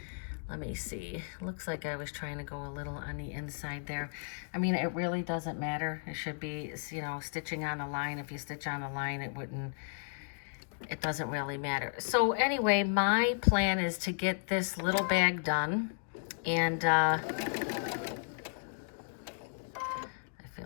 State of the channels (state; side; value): silent; right; digital silence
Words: Let me see. Looks like I was trying to go a little on the inside there. I mean, it really doesn't matter. It should be, you know, stitching on a line. If you stitch on a line, it doesn't really matter. So anyway, my plan is to get this little bag done. And I